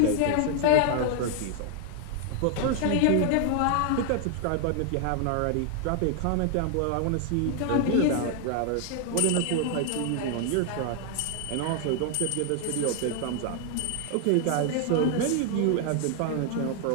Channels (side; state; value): both; different; correlation 0.00